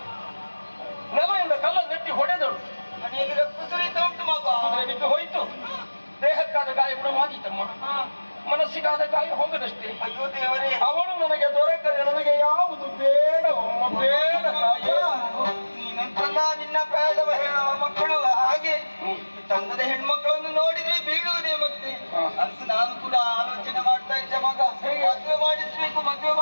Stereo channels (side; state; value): both; inverted; correlation -1.00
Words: ನೆಲದಿಂದ ಕಲ್ಲ ನೆಟ್ಟಿ ಹೊಡೆದಳು. ಮನೆಯಲ್ಲಿ ರಕ್ತ ಸುರಿತ ಉಂಟು ಮಗ. ಕುದುರೆ ಬಿದ್ದು ಹೋಯಿತು. ದೇಹಕ್ಕಾದ ಗಾಯ ಗುಣವಾಗಿತ್ತಮ್ಮ, ಮನಸ್ಸಿಗಾದ ಗಾಯ ಹೋಗದಷ್ಟೇ. ಅಯ್ಯೋ ದೇವರೇ, ಅವಳು ನನಗೆ ದೊರಕದೆ ನನಗೆ ಯಾವುದು ಬೇಡವಮ್ಮ, ಬೇಡ ತಾಯೇ. ನೀನಂತಲ್ಲ ನಿನ್ನ ಪ್ರಾಯದ ಮಕ್ಕಳು ಹಾಗೆ ಚಂದದ ಹೆಣ್ಮಕ್ಕಳನ್ನು ನೋಡಿದ್ರೆ ಬೀಳುವುದೇ. ಮತ್ತೆ ಅಂತ ನಾನು ಕೂಡ ಆಲೋಚನೆ ಮಾಡ್ತಾ ಇದ್ದೆ ಮಗ, ಮದುವೆ